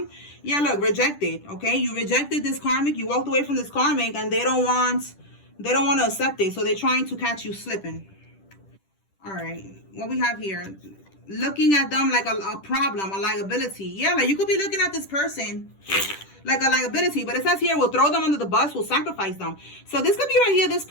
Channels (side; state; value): right; late; 10 ms